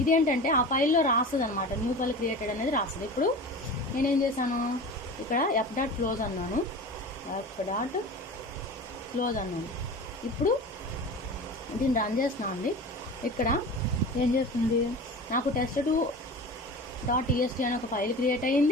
ఇదేంటంటే ఆ ఫైల్లో రాస్తుంది అనమాట, న్యూ ఫైల్ క్రియేటెడ్ అనేది రాస్తుంది. ఇప్పుడు నేనేం చేశాను, ఇక్కడ f.close అన్నాను. ఇప్పుడు దీన్ని రన్ చేస్తున్నాను అండి. ఇక్కడ ఏం చేస్తుంది, నాకు test2.txt అనే ఒక ఫైల్ క్రియేట్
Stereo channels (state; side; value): normal; both; correlation 0.34